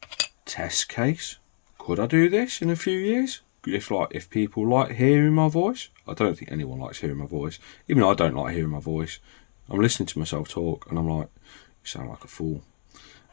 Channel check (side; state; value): right; silent; 61 dB below the other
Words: test case. Could I do this in a few years? If people like hearing my voice? I don't think anyone likes hearing my voice. Even though I don't like hearing my voice, I'm listening to myself talk and I'm like, you sound like a fool.